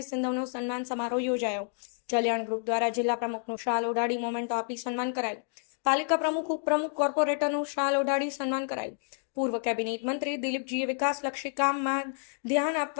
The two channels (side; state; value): right; silent; 58 dB below the other